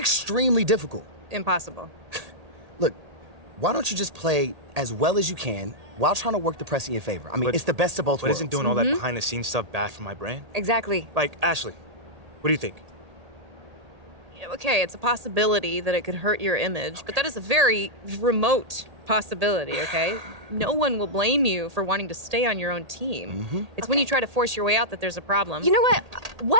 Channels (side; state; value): left; late; 1.8 ms